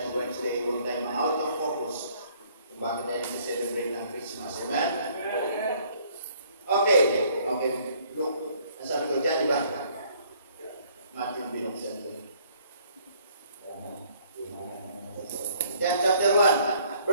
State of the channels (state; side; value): inverted; both; correlation -0.61